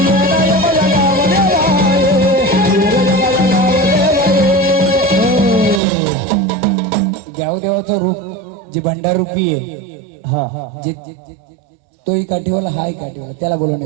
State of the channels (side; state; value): left; drops out; at 5.8 s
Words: गावदेवाचं रूप जे भंडारूपी आहे, जे तोही काठीवाला हाय काठीवाला, त्याला बोलवणे